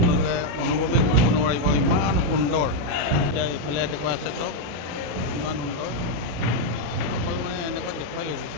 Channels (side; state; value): left; late; 35 ms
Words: অনুভৱেই কৰিব নোৱাৰিব ইমান সুন্দৰ এতিয়া এইফালে দেখুৱাই আছে চব ইমান সুন্দৰ অকল মানে এনেকৈ দেখুৱাই লৈছোঁ